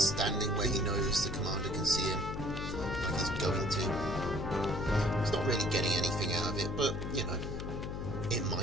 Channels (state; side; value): noise; left; hum, 5 dB below the sound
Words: standing where he knows the commander can see him, like he's going to. He's not really getting anything out of it, but, you know, it